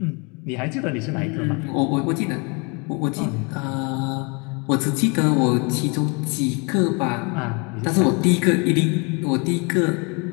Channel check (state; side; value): quieter; right; 31.9 dB